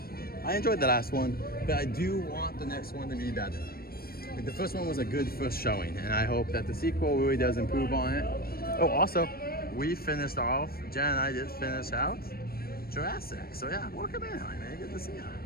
I enjoyed the last one, but I do want the next one to be better. Like the first one was a good first showing, and I hope that the sequel really does improve on it. Oh, also, we finished off, Jen and I did finish out Jurassic. So yeah, welcome in, man. Good to see you.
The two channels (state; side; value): late; right; 0.44 ms